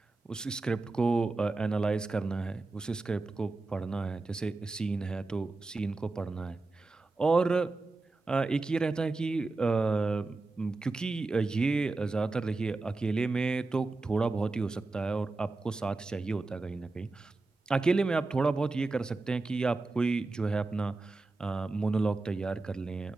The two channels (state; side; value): quieter; left; 3.5 dB